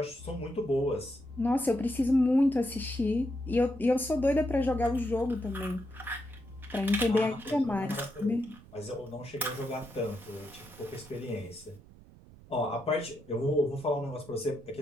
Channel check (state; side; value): noise; right; rumble, 22 dB below the sound